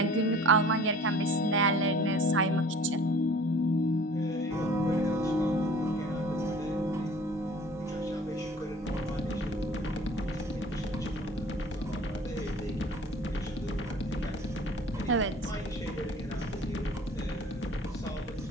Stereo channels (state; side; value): normal; both; correlation 0.48